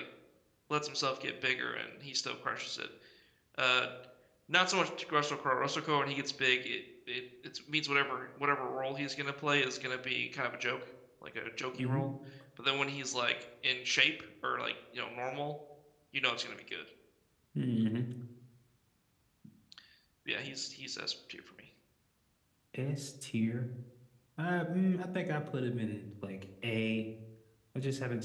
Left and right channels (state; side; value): identical; both; correlation 1.00